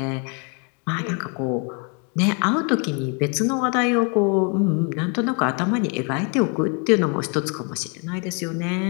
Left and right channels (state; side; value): quieter; right; 35.3 dB